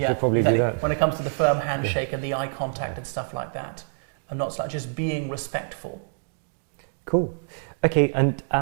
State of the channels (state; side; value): silent; left; digital silence